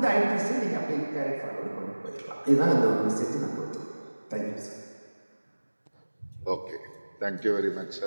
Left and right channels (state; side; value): inverted; both; correlation -1.00